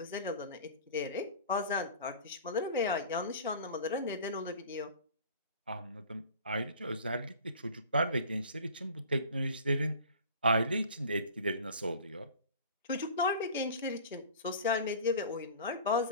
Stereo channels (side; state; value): both; inverted; correlation -0.43